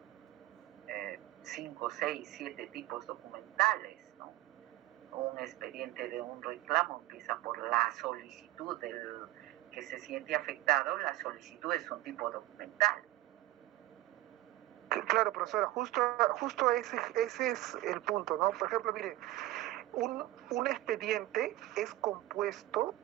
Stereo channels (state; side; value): quieter; left; 16.3 dB